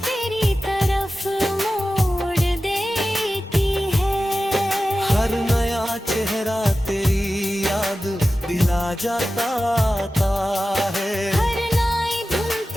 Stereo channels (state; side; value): normal; both; correlation 0.94